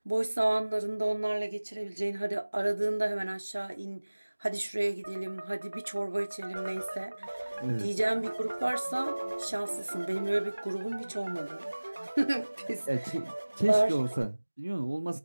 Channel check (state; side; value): inverted; both; correlation -1.00